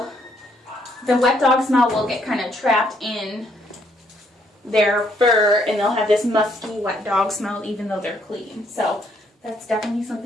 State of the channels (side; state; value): both; normal; correlation 0.70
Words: wet dog smell will get kind of trapped in their fur and they'll have this musky wet dog smell even though they're clean. So that's definitely